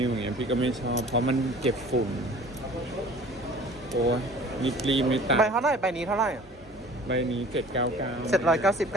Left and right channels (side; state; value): both; normal; correlation 0.47